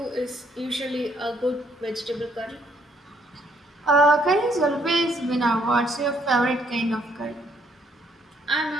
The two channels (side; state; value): both; normal; correlation 0.68